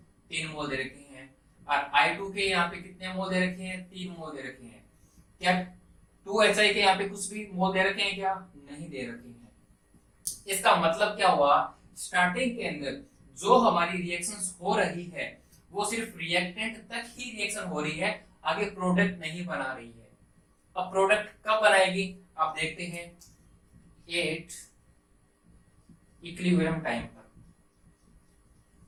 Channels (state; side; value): identical; both; correlation 1.00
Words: 3 मोल दे रखे हैं। और I2 के यहाँ पे कितने मोल दे रखे हैं, 3 मोल दे रखे हैं। क्या 2HI के यहाँ पे कुछ भी मोल दे रखे हैं, क्या नहीं दे रखे हैं। इसका मतलब क्या हुआ, स्टार्टिंग के अंदर जो हमारी रिएक्शंस हो रही है वो सिर्फ रिएक्टेंट तक ही रिएक्शन हो रही है, आगे प्रोडक्ट नहीं बना रही है। अब प्रोडक्ट कब बनाएगी, आप देखते हैं 8 इक्विलिब्रियम टाइम पर।